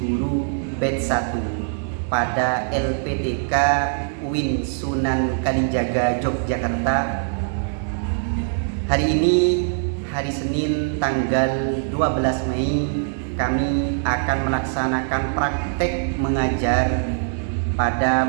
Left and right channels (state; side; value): silent; left; digital silence